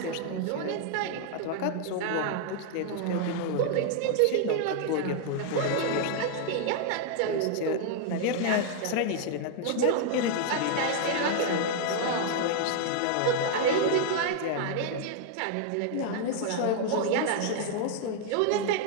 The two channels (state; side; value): different; both; correlation 0.00